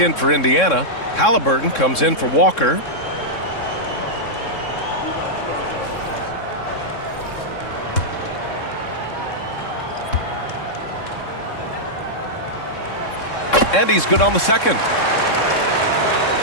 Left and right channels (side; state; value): right; late; 3.6 ms